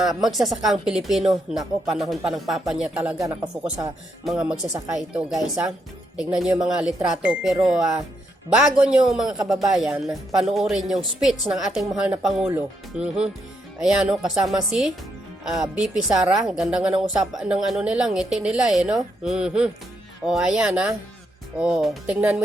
magsasakang Pilipino. Nako, panahon pa ng papa niya talaga nakafocus sa mga magsasaka ito, guys, ha. Tignan nyo yung mga litrato. Pero bago nyo mga kababayan, panoorin yung speech ng ating mahal na Pangulo. Ayan, no, kasama si BP Sara. Ganda nga ng usapan ng nila, ngiti nila, no? O, ayan, ha. O, tingnan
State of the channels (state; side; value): normal; both; correlation 0.78